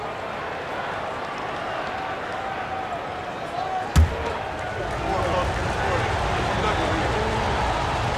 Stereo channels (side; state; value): both; identical; correlation 1.00